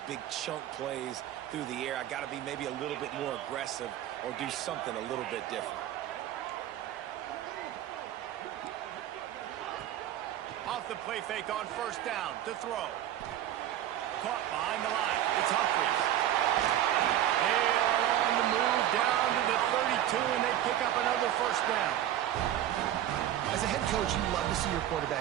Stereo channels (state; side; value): quieter; left; 12.0 dB